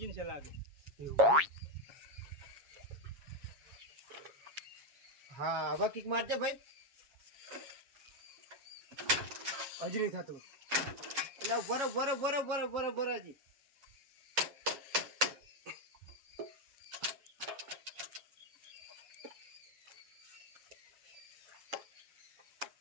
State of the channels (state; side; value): late; left; 7.3 ms